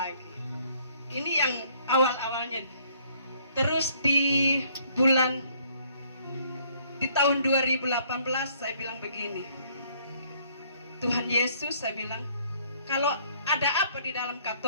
Ini yang awal-awalnya. Terus di tahun 2018 saya bilang begini, Tuhan Yesus, saya bilang, kalau ada apa di dalam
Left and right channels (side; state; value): both; inverted; correlation -0.63